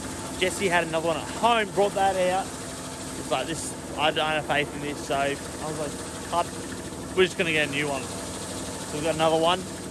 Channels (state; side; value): identical; both; correlation 1.00